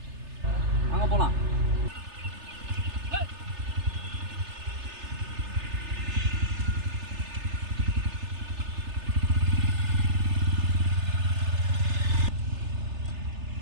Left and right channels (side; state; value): left; late; 3.3 ms